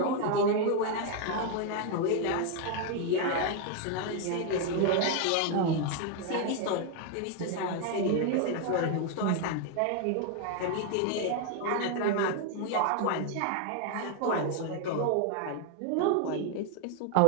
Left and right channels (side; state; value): both; different; correlation 0.01